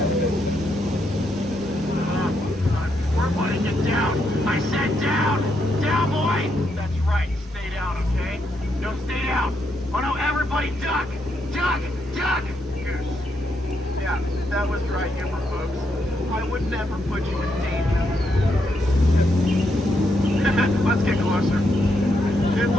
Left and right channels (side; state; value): both; normal; correlation 0.79